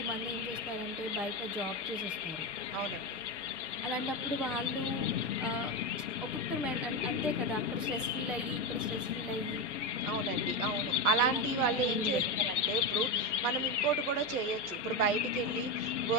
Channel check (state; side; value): normal; both; correlation 0.13